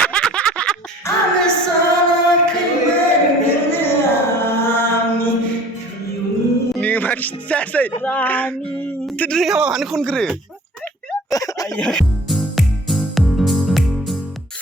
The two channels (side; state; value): both; normal; correlation 0.48